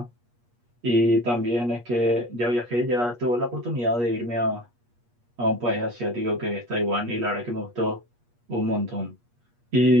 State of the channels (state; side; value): late; left; 8.4 ms